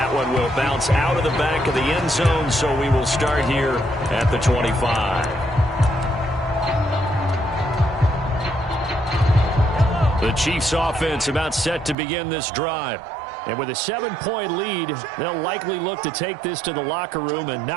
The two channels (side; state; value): left; drops out; at 12.0 s